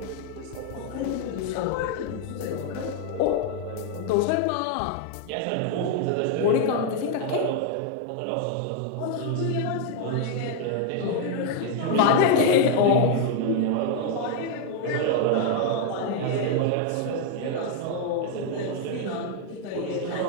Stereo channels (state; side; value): different; both; correlation 0.00